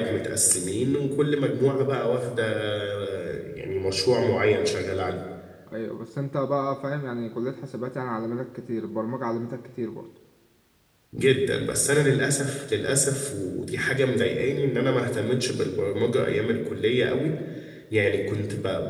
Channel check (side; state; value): both; identical; correlation 1.00